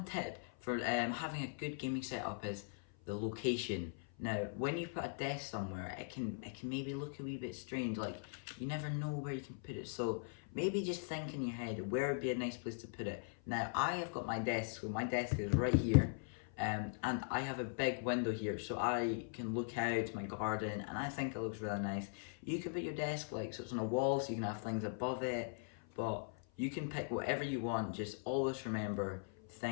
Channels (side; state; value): right; silent; 51 dB below the other